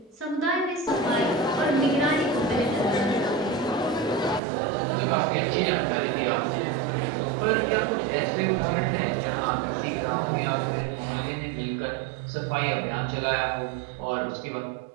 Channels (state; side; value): drops out; left; at 4.4 s